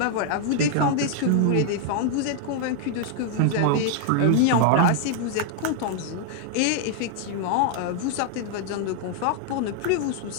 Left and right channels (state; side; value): different; both; correlation 0.00